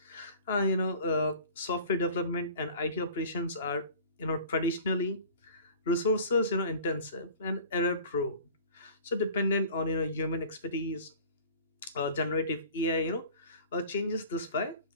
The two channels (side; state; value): both; inverted; correlation -0.43